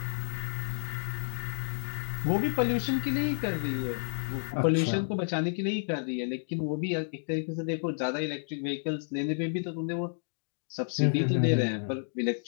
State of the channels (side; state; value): right; silent; digital silence